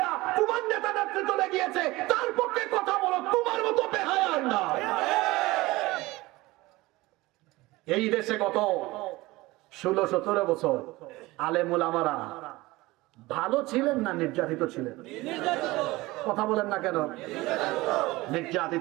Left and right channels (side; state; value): left; quieter; 20.3 dB